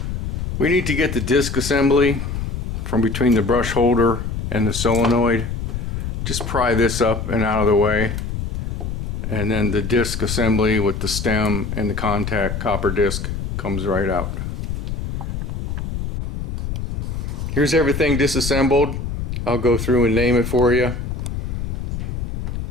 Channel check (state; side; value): noise; left; rumble, 3 dB below the sound